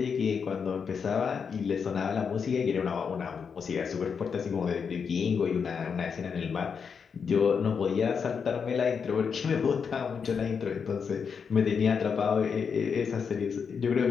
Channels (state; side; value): quieter; right; 6.3 dB